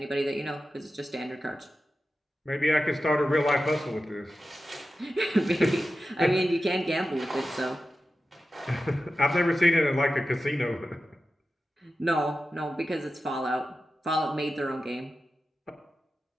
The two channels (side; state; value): both; normal; correlation 0.92